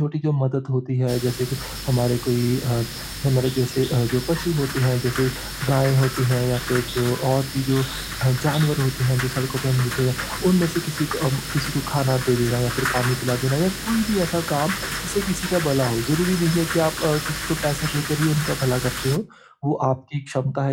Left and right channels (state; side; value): identical; both; correlation 1.00